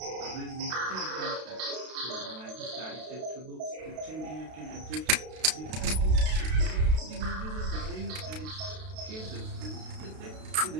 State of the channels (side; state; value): left; late; 32 ms